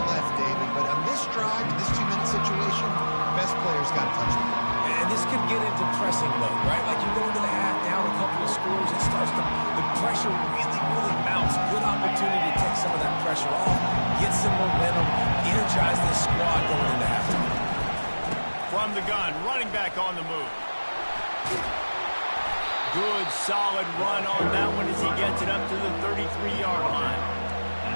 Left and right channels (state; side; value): inverted; both; correlation -1.00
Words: left, David, but on this drive, in this 2-minute situation, the best players got to touch the ball. And this could get into pressing mode, right? Like you go into the half, down a couple of scores, it starts to, the pressure really mounts. Good opportunity to take some of that pressure off, get some momentum, energize this squad going into halftime. From the gun, running back on the move. Good, solid run on that one as he gets it up to the 33-yard line.